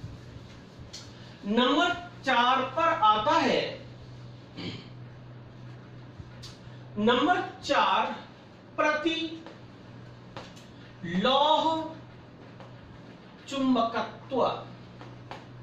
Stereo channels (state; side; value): identical; both; correlation 1.00